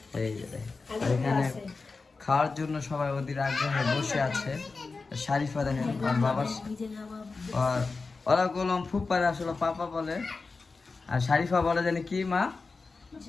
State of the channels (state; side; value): quieter; right; 4.1 dB